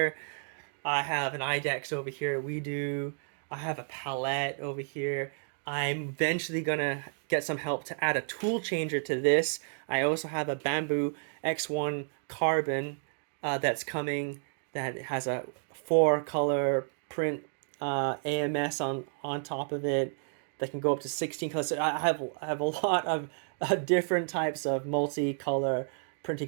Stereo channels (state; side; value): silent; left; digital silence